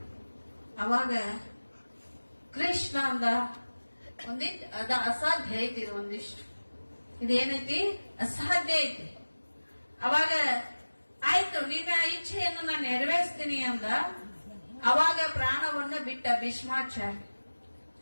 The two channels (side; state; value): both; inverted; correlation -1.00